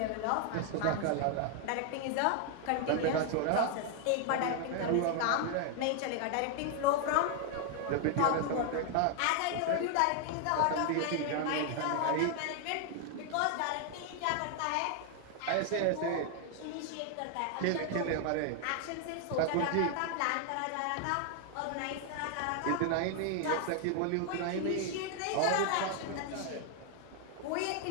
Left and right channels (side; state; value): both; different; correlation 0.00